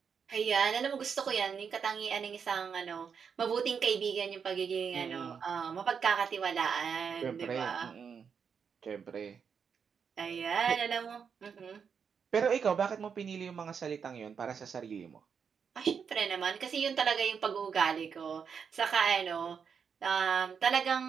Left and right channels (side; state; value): left; quieter; 6.6 dB